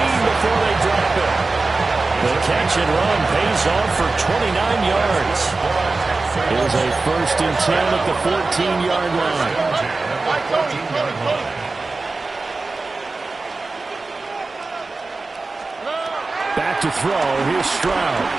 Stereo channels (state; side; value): quieter; left; 3.6 dB